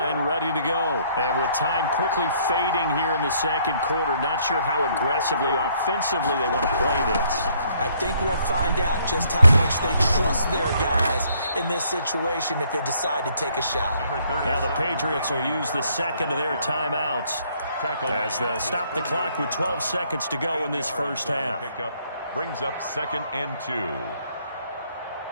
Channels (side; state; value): both; inverted; correlation -0.66